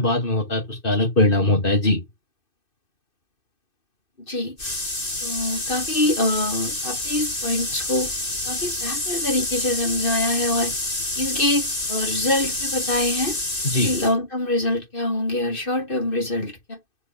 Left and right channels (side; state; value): right; late; 2.6 ms